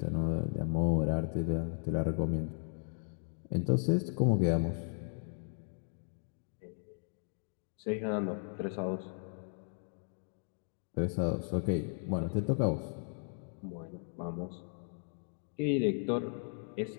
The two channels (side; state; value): right; silent; 54 dB below the other